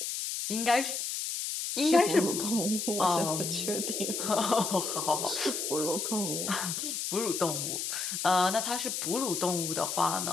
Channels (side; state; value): left; noise; hiss, 3 dB below the sound